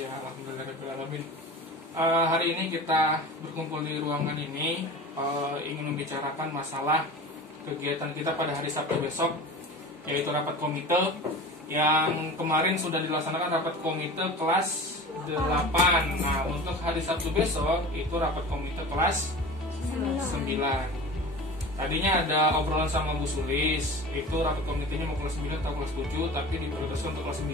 alhamdulillahirrahmanirrahim. Hari ini kita berkumpul di ruangan ini ingin membicarakan masalah kegiatan kita pada hari Sabtu besok, yaitu rapat komite yang kemarin sudah dilaksanakan rapat komite kelas 8. Nah, untuk hari Sabtu besok itu rapat komite kelas 9. Tadinya ada obrolan sama Bu Sulis, itu rapat komitenya mau kelas 9 atau kelas 7, tapi diprioritaskan untuk kelas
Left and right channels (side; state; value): both; normal; correlation 0.36